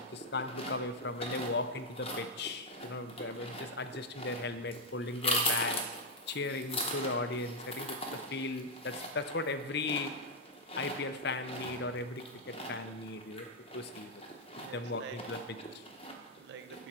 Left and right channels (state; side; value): normal; both; correlation 0.02